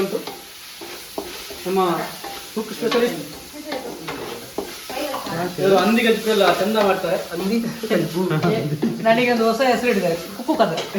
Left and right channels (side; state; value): both; identical; correlation 1.00